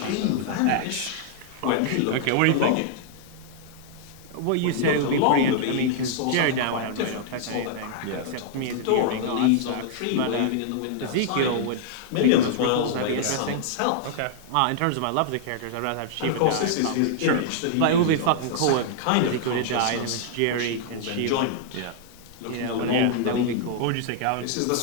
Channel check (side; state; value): both; different; correlation -0.01